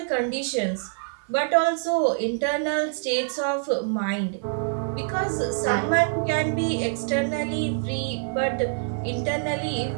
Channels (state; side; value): silent; left; 61 dB below the other